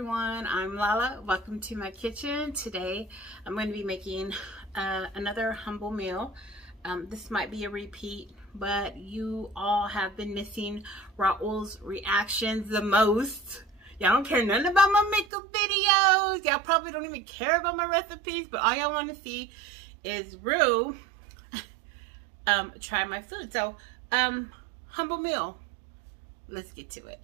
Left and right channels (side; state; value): left; drops out; at 15.2 s